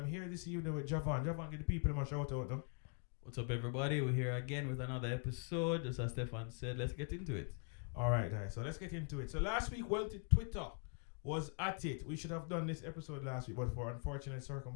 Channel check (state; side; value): quieter; right; 38.7 dB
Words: here this evening with Javon. Javon, get the people in my shout out, no? What's up, everybody? We're here again with another episode. Just as Stefan said, let's get into it. All right, guys. So let's get into it. So last week, Twitter was at it. We should have done this episode last week, but for unfortunate